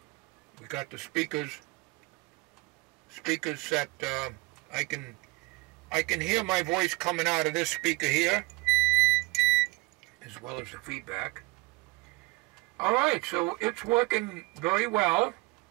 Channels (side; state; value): left; quieter; 24.2 dB